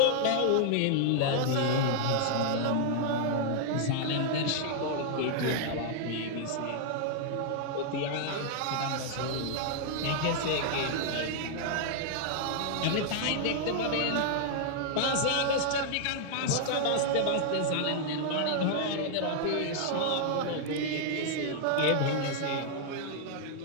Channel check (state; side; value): different; both; correlation -0.01